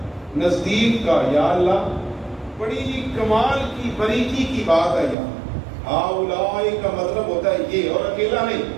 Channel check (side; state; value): left; drops out; at 5.2 s